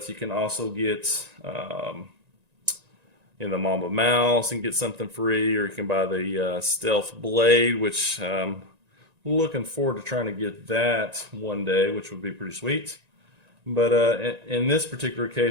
you can also get the Mamba mouse and get something free, or you can buy the Stealth Blade, which looking forward to trying to get that one day, which would be pretty sweet. But in this particular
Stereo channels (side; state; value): left; late; 1.9 ms